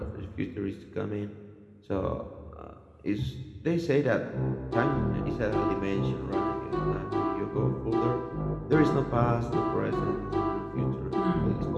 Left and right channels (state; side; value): identical; both; correlation 1.00